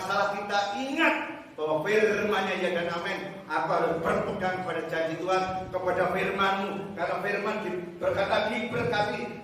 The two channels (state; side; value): identical; both; correlation 1.00